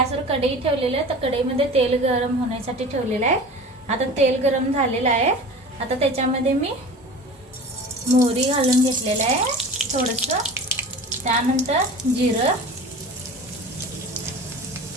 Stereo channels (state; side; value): normal; both; correlation 0.37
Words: कढई ठेवलेली आहे, तर कढईमध्ये तेल गरम होण्यासाठी ठेवलेलं आहे। आता तेल गरम झालेलं आहे। आता त्याच्यामध्ये मी मोहरी घालून घेतलेलं आहे थोडंसं, त्यानंतर जिरं,